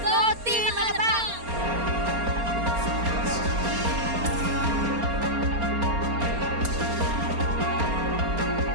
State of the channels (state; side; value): late; left; 4.3 ms